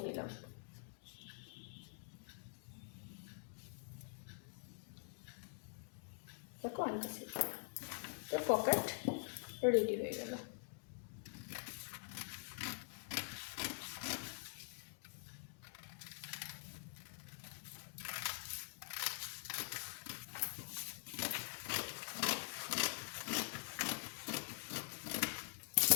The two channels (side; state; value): right; silent; digital silence